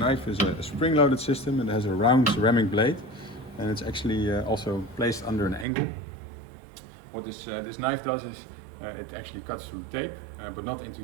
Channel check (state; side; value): drops out; left; at 5.7 s